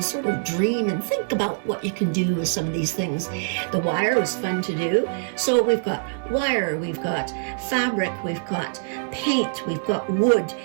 sort of dream and think about what you can do with some of these things. The wire was fun to do. So we've got wire, we've got fabric, we've got paint, we've got wood.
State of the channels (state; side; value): silent; left; digital silence